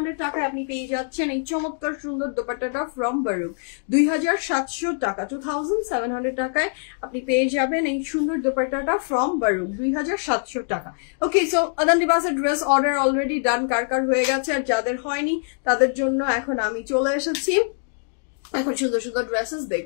টাকায় আপনি পেয়ে যাচ্ছেন এই চমৎকার সুন্দর দোপাট্টাটা from Baru 2700 টাকা 2700 টাকায় আপনি পেয়ে যাবেন এই সুন্দর দোপাট্টাটা from Baru 2700 টাকা ওকে সো আদান লিবাসের ড্রেস অর্ডার অলরেডি ডান কার হয়ে গেছে আর যাদের হয়নি তাদের জন্য এখন আমি চলে এসেছি এখন সুন্দর ড্রেসেস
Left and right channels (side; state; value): right; silent; digital silence